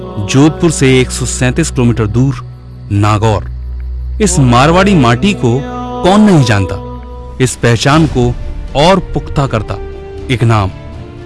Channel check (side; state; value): both; identical; correlation 1.00